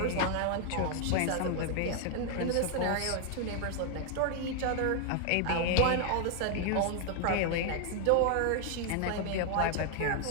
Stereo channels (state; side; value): different; both; correlation 0.00